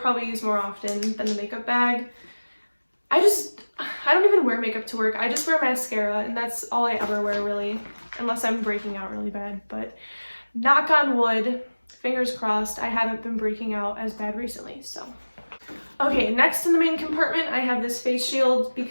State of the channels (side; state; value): both; inverted; correlation -1.00